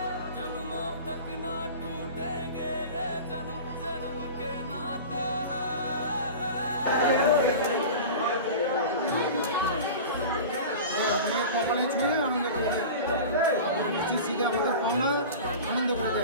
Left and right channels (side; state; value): both; inverted; correlation -0.33